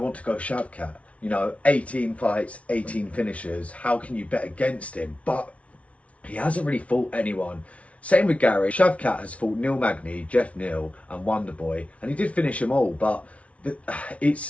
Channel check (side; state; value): right; late; 0.064 ms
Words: to go Shavkat. You know, 18 fights, 18 finishes. How can you bet against him? But he hasn't really fought anyone. Same with Garry. Shavkat has fought Neil Magny, Jeff Neal, and Wonderboy, and he did finish them all. But